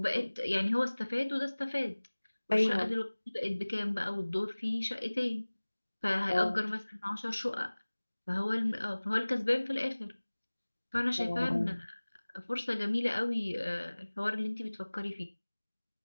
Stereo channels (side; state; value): both; inverted; correlation -1.00